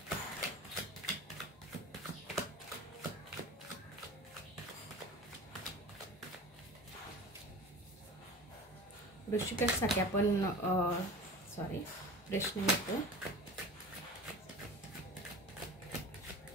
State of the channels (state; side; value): normal; both; correlation 0.37